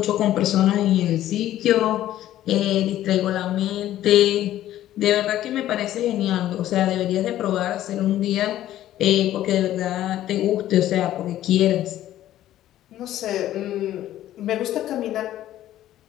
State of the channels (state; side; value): quieter; right; 13.1 dB